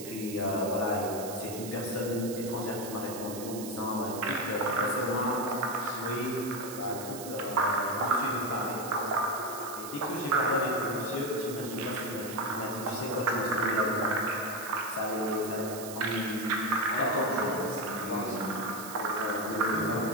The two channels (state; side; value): noise; right; hiss, 11 dB below the sound